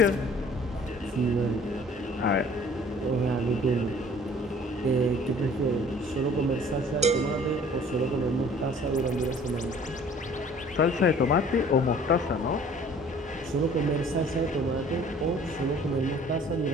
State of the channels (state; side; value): normal; both; correlation 0.52